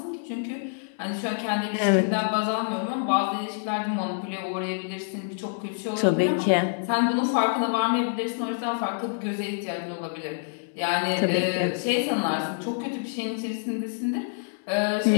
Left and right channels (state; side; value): silent; right; 60 dB below the other